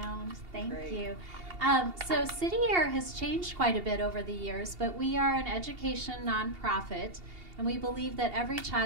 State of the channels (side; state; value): left; late; 2.8 ms